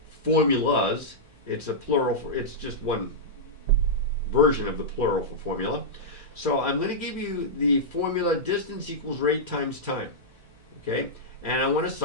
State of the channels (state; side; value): normal; both; correlation -0.10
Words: formulas. It's a plural. It's just one version of the plural for formula. So I'm going to give you the formula distance equals rate times time. Okay, and I want to